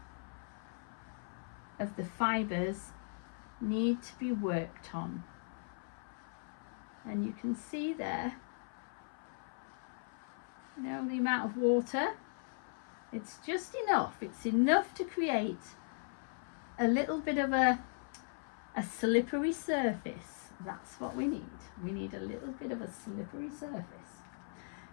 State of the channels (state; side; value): silent; right; 52 dB below the other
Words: fibres need to be worked on. And you can see there, you know, the amount of water. It's just enough. It's enough to create a little bit of a slippery surface. That's what we need. We need a little bit of a slippery surface.